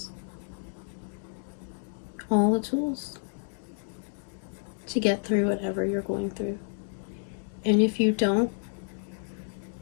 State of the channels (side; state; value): right; silent; digital silence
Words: to get through whatever you're going through. And if you don't,